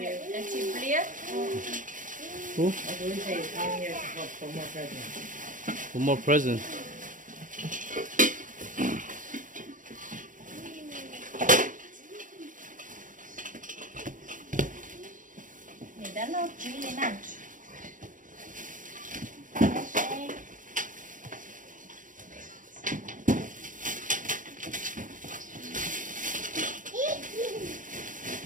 Who? For more presents. Mình đã lót trí lên nè.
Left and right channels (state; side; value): late; left; 0.38 ms